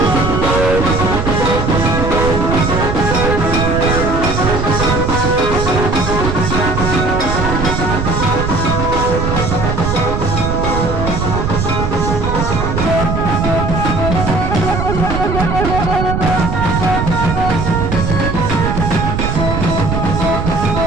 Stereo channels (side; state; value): right; noise; rumble, 1 dB below the sound